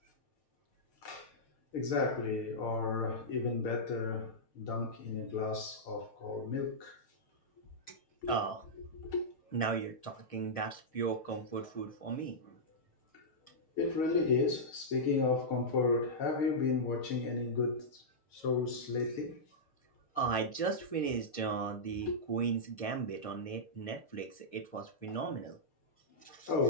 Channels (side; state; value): right; late; 6.6 ms